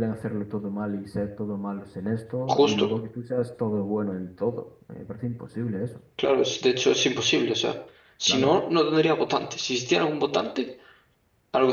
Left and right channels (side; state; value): both; identical; correlation 1.00